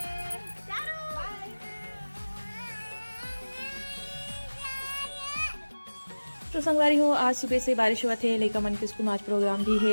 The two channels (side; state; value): both; inverted; correlation -1.00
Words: तो संगवारी हो आज सुबह से बारिश हुआ थे लेका मन के स्कूल में आज प्रोग्राम भी